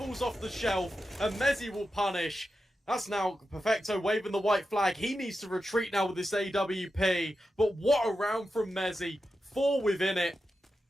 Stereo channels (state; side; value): normal; both; correlation 0.90